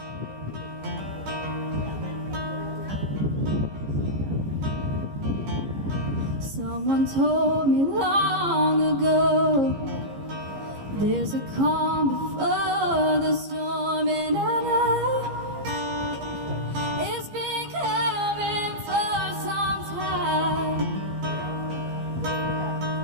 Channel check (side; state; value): left; late; 15 ms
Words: Someone told me long ago, there's a calm before the storm, and I know it's been coming for some time.